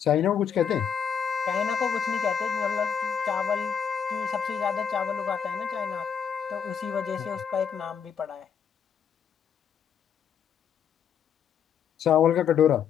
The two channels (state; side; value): quieter; right; 7.6 dB